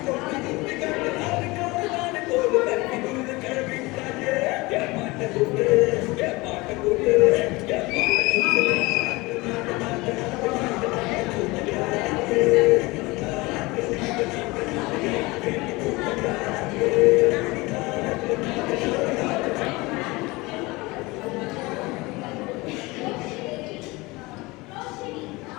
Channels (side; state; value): right; quieter; 23.0 dB